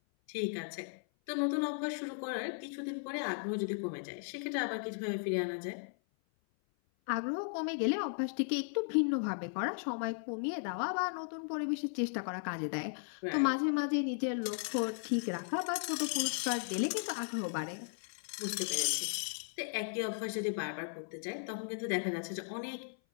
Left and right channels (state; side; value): silent; right; 54 dB below the other